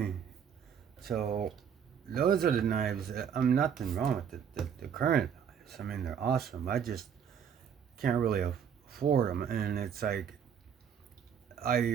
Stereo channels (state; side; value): quieter; left; 7.8 dB